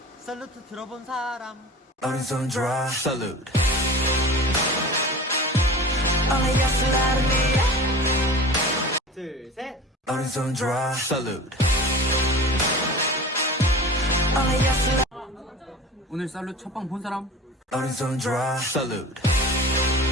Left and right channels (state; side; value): normal; both; correlation 0.37